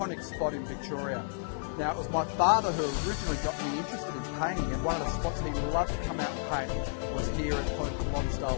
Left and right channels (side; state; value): right; silent; digital silence